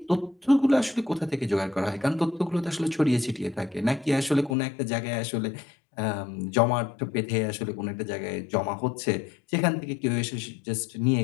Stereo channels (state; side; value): drops out; right; at 4.5 s